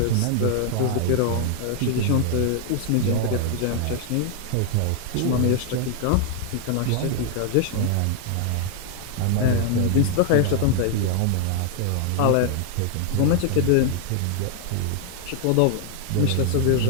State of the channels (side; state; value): both; different; correlation 0.00